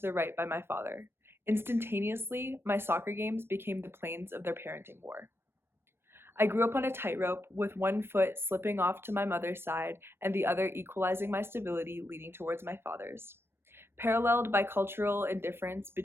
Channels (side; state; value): left; late; 0.12 ms